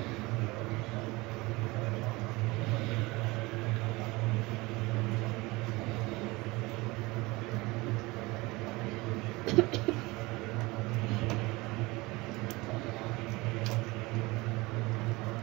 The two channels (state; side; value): quieter; left; 22.7 dB